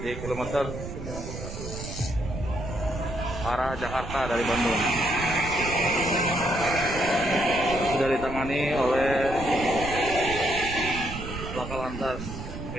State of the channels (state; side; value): noise; right; rumble, 9 dB below the sound